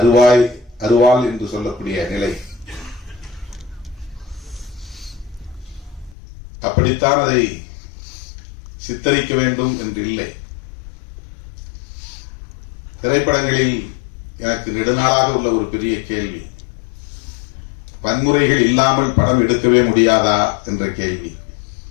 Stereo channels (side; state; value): right; drops out; at 6.2 s